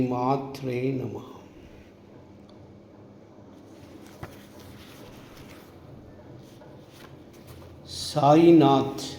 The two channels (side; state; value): both; identical; correlation 1.00